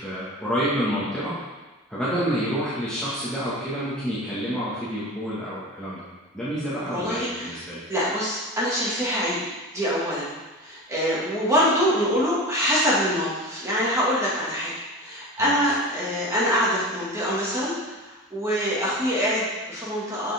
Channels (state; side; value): normal; both; correlation 0.30